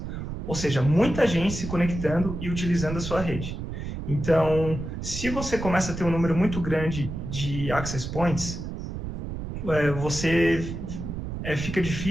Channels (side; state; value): right; noise; rumble, 6 dB below the sound